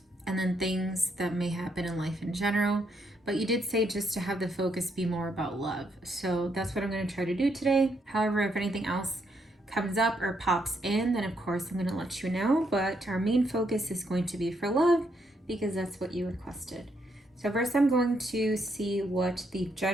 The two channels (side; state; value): both; normal; correlation 0.76